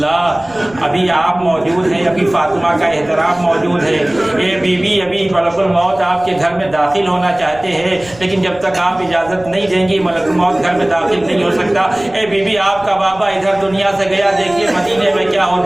ابھی آپ موجود ہیں, ابھی فاطمہ کا احترام موجود ہے, اے بی بی ابھی ملک الموت آپ کے گھر میں داخل ہونا چاہتے ہیں, لیکن جب تک آپ اجازت نہیں دیں گی ملک الموت گھر میں داخل نہیں ہو سکتا. اے بی بی آپ کا بابا ادھر دنیا سے گیا, دیکھیے مدینے میں کیا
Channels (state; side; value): noise; right; rumble, 22 dB below the sound